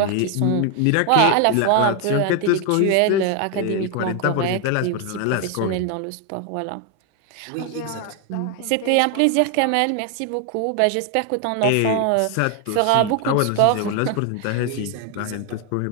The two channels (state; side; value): different; both; correlation 0.01